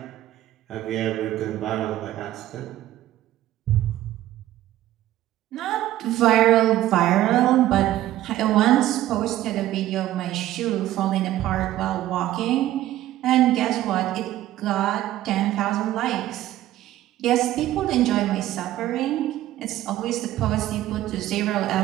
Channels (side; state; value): left; quieter; 14.1 dB